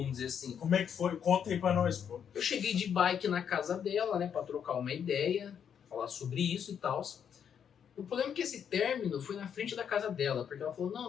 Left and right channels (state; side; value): quieter; right; 8.1 dB